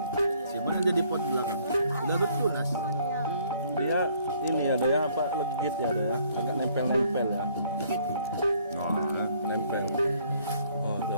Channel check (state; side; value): inverted; both; correlation -0.63